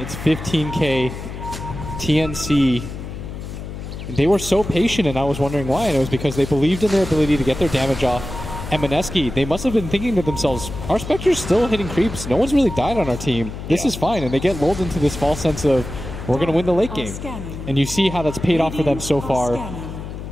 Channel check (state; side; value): noise; left; hum, 9 dB below the sound